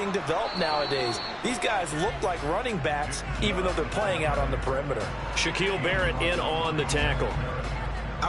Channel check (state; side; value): identical; both; correlation 1.00